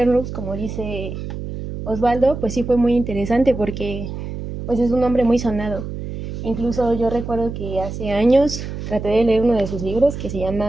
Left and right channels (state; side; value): noise; right; hum, 7 dB below the sound